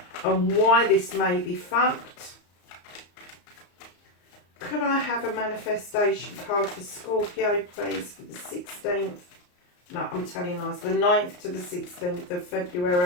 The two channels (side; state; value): right; late; 34 ms